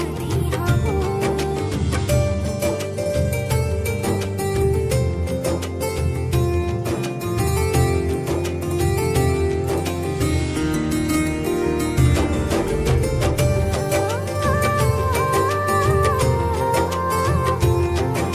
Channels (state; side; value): identical; both; correlation 1.00